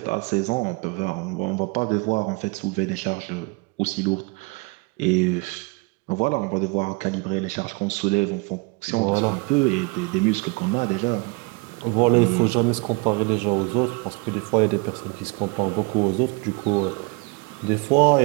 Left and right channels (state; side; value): quieter; left; 28.5 dB